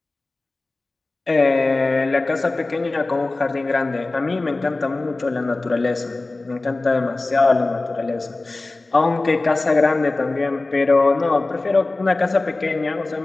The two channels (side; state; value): right; quieter; 3.2 dB